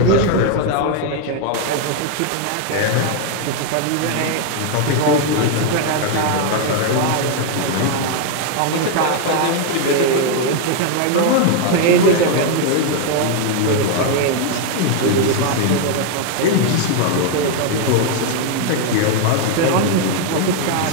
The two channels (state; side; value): different; both; correlation 0.01